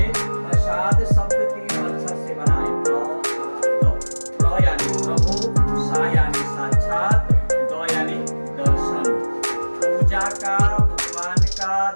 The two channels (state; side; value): inverted; both; correlation -1.00